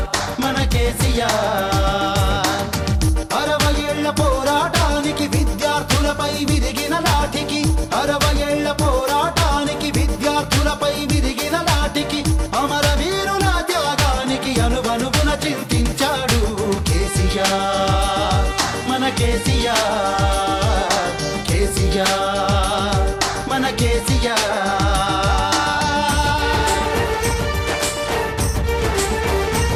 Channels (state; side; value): identical; both; correlation 1.00